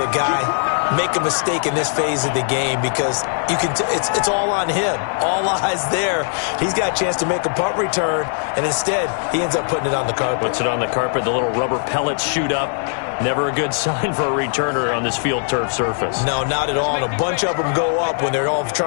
guy make a mistake in this phase of the game because you can it's all on him. All eyes there. He's got a chance to make a punt return, and instead he ends up putting it on the carpet. Puts it on the carpet. The little rubber pellets shoot up. Never a good sign for a returner on this field turf surface. No, not at all. And a bunch of them go up when they're all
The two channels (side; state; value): right; silent; digital silence